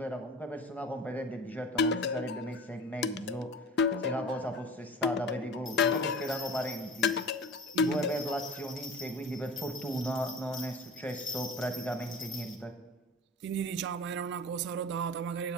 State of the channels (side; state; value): both; normal; correlation 0.38